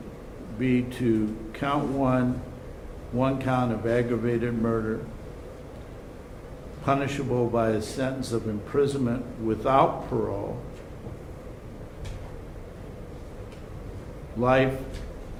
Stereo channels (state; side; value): identical; both; correlation 1.00